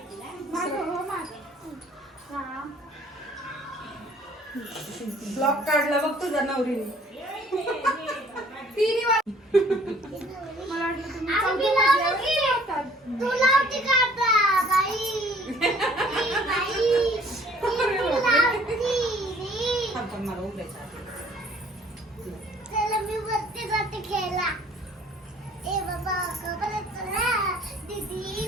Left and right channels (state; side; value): normal; both; correlation 0.57